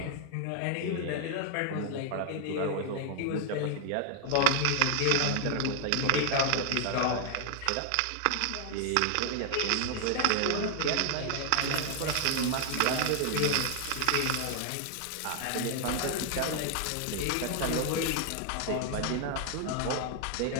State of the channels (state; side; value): different; both; correlation 0.00